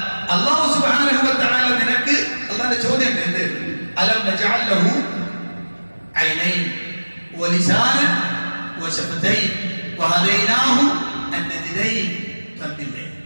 അല്ലാഹു സുബ്ഹാനഹു വ തആല നിനക്ക്, അല്ലാഹുവിന്റെ ചോദ്യം എന്ത്? അലം നജഅൽ ലഹു ഐനൈൻ വലിസാനൻ വശഫതൈൻ വഹദൈനാഹു അന്നജിദൈൻ. തന്നില്ലേ?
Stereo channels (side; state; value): both; inverted; correlation -1.00